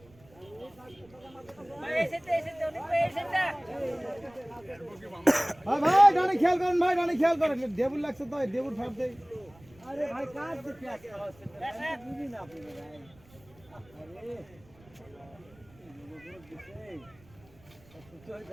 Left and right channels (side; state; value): right; noise; rumble, 26 dB below the sound